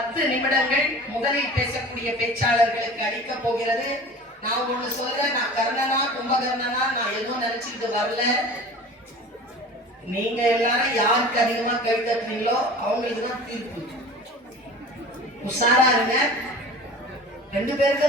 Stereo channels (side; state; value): both; normal; correlation 0.40